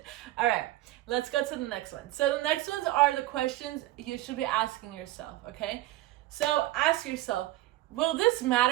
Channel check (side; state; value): left; quieter; 16.4 dB